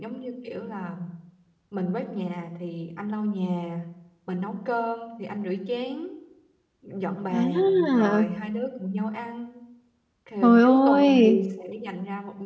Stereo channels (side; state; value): both; identical; correlation 1.00